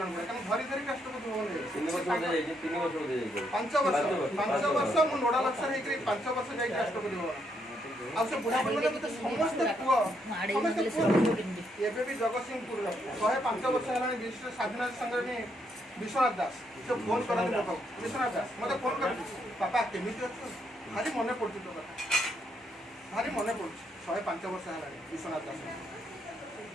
बुढ़ा कहीं धरी धरी राष्ट्रपति भवन 5 वर्ष मु नोडाल अफसर 5 वर्ष जाइए राष्ट्रपति भवन ଆଉ ସେ ବୁଢ଼ା ବୁଢ଼ୀ ମତେ ସମସ୍ତେ ପୁଅ ସମସ୍ତେ ପୁଅ ଏବେ ବି ଜଗତସିଂହପୁରର 105 ବର୍ଷ ହେଲାଣି ବିଶିଷ୍ଟ ସ୍ୱାଧୀନତା ସଂଗ୍ରାମୀ ବିଶ୍ୱନାଥ ଦାସ ସେ ଫୋନ୍ କରନ୍ତି ମୋ ପାଖକୁ ବିଶ୍ୱନାଥ ଦାସ ମୋତେ ଫୋନ୍ କରନ୍ତି ବାପା କେମିତି ଅଛୁ ଭାରି ମନେ ପଡ଼ୁଛି ତୋ କଥା ଭାରି ମନେ ପଡ଼ୁଛି 105 ବର୍ଷ ହେଲାଣି ବିଶ୍ୱନାଥ ଦାସ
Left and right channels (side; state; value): both; normal; correlation 0.75